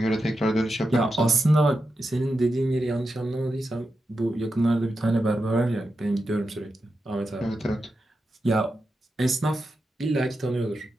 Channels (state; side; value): normal; both; correlation 0.89